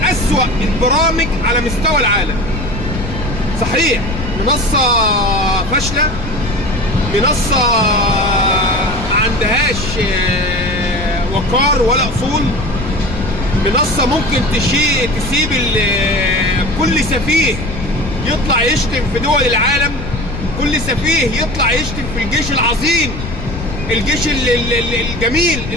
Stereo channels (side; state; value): left; noise; rumble, 8 dB below the sound